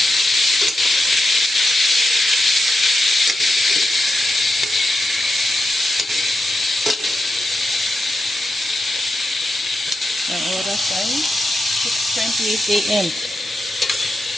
Ang oras ay 6:28 AM.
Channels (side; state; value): both; normal; correlation 0.87